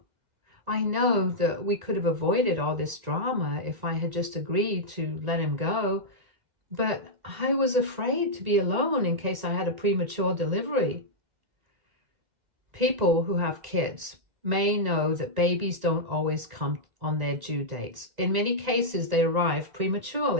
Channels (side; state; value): left; late; 1.9 ms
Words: I know that we could have avoided all this drama if I had just agreed to let him go, but I was afraid to be alone in case I had a premature delivery. People who have kids may know that babies don't always come on their due dates. In many cases, they arrive